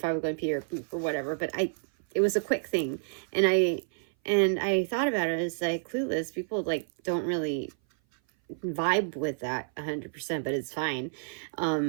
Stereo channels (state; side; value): silent; left; 57 dB below the other